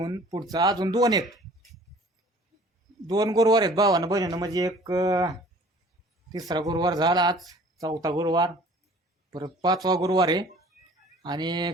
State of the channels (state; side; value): normal; both; correlation 0.50